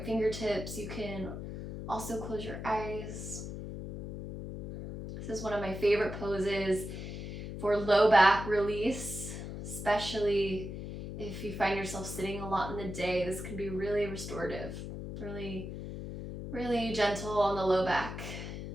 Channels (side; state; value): left; noise; hum, 8 dB below the sound